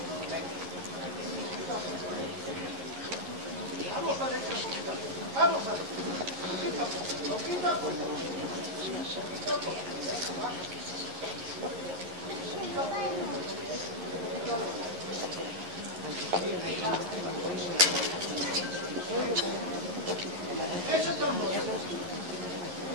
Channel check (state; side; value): late; left; 11 ms